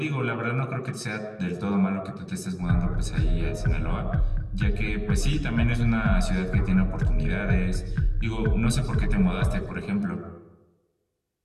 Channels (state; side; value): identical; both; correlation 1.00